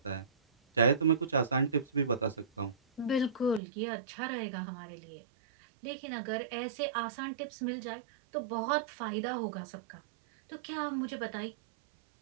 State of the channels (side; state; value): left; drops out; at 3.6 s